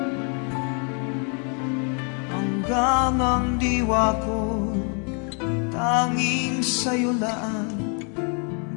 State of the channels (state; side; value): quieter; right; 39.1 dB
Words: Hanggang ang diwa ko tanging sa'yo lang